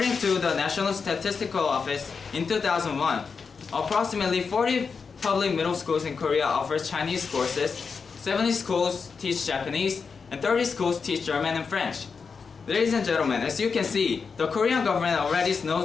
to the National Statistical Office, in 2001, approximately 40 public middle schools in Korea offer Chinese courses, 70 schools teach Japanese, and 30 schools teach German and French. Ladies and gentlemen, as you can see, the Korean government already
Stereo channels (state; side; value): quieter; right; 5.4 dB